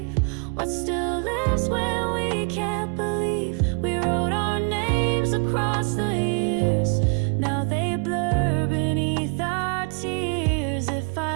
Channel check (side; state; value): left; quieter; 38.0 dB